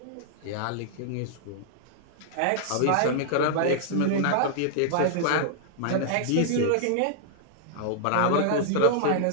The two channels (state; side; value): different; both; correlation -0.01